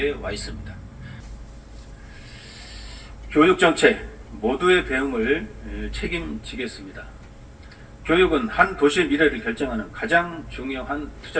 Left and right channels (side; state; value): both; identical; correlation 1.00